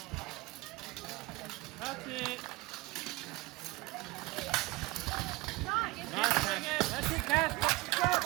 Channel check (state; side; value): quieter; left; 22.5 dB